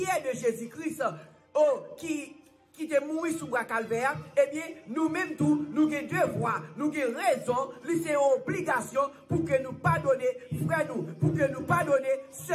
de Jésus-Christ, qui est mort sous le calvaire, eh bien, nous-mêmes tous, nous avons devoir, nous avons raison, nous avons obligation pour que nous pardonnions frères nous, pour que nous pardonnions ceux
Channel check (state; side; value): identical; both; correlation 1.00